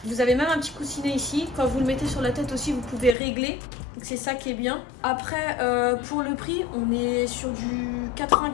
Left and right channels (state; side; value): drops out; right; at 3.2 s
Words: Vous avez même un petit coussinet ici. Quand vous le mettez sur la tête aussi, vous pouvez régler. Donc c'est ça qui est bien. Après, pour le prix, on est sur du